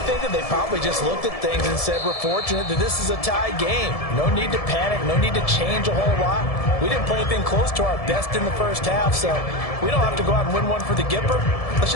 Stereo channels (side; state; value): right; late; 1.7 ms